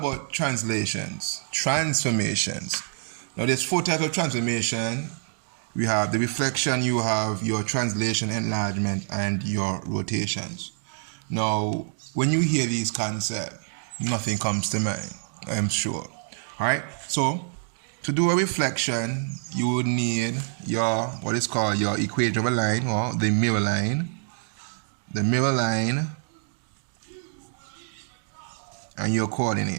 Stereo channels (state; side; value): silent; left; digital silence